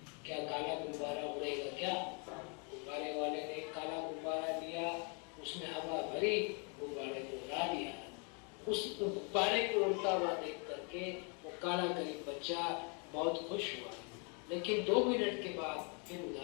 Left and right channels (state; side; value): quieter; right; 36.4 dB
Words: क्या काला गुब्बारा उड़ेगा क्या? गुब्बारे वाले ने काला गुब्बारा लिया, उसमें हवा भरी, गुब्बारे को उड़ा दिया। उस गुब्बारे को उड़ता हुआ देख करके वो काला गरीब बच्चा बहुत खुश हुआ, लेकिन 2 मिनट के बाद फिर